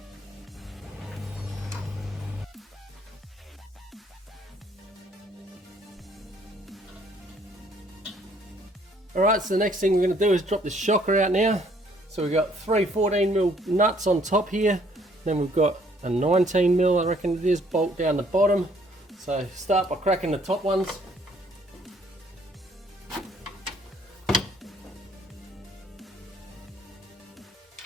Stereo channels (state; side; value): normal; both; correlation 0.63